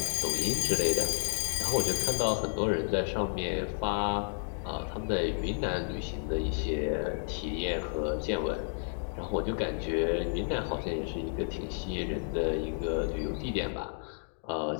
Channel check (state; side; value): silent; right; digital silence